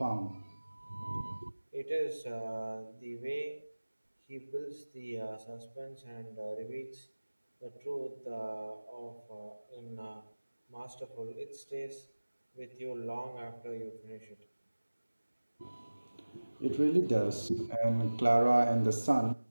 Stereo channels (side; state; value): both; inverted; correlation -1.00